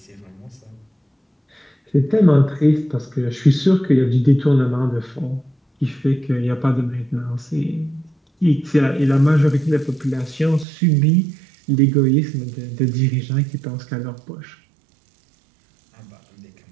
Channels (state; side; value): drops out; left; at 10.7 s